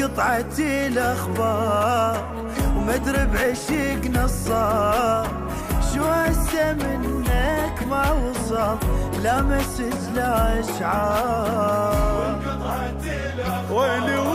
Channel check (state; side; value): identical; both; correlation 1.00